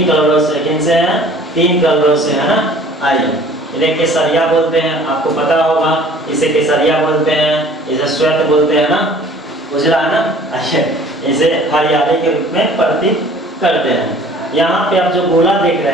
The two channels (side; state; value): both; normal; correlation 0.51